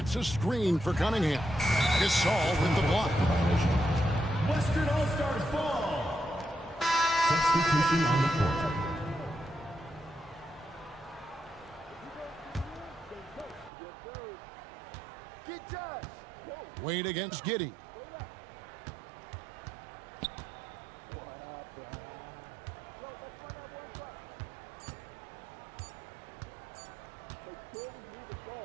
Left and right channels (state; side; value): drops out; left; at 13.7 s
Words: a screen for Cunningham. Gasol with the block. Western All-Stars ball. Substitution on the court. Wade against Giddey.